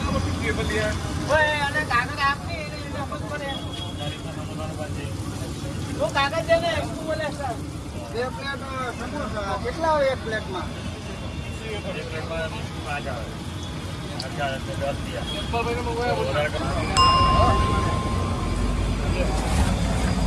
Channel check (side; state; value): both; identical; correlation 1.00